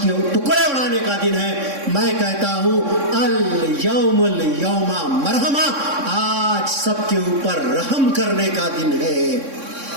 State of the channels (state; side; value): late; left; 3.6 ms